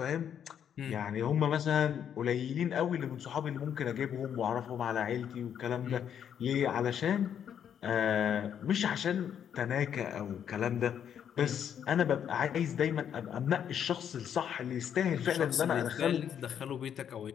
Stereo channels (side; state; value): right; quieter; 8.8 dB